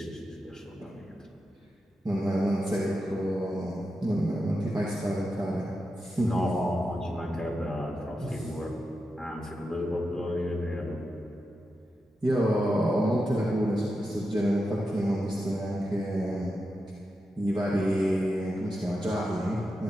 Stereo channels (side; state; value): both; normal; correlation 0.89